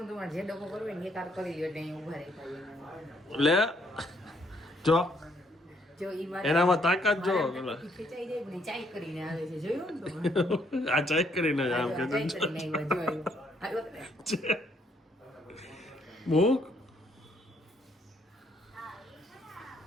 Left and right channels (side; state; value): both; normal; correlation 0.70